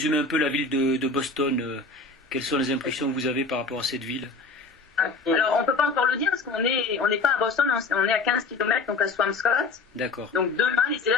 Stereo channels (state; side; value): quieter; right; 3.9 dB